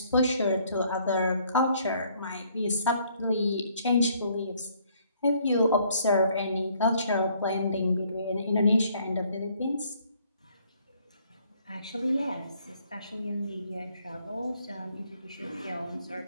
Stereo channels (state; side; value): inverted; both; correlation -0.64